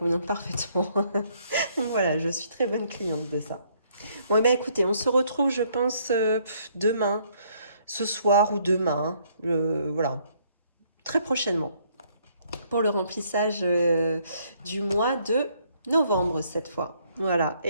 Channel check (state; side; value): inverted; both; correlation -0.67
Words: parfaitement. Donc voilà, je suis très bonne cliente de ça. Bon, eh bien, écoutez, on se retrouve, je pense, demain, ce soir ou demain, voilà, très prochainement, pour le remplissage du mois de novembre cette fois. Voilà,